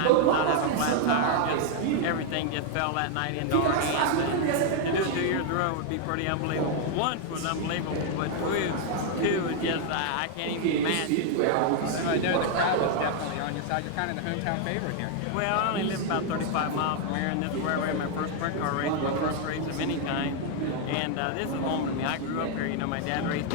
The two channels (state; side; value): different; both; correlation 0.00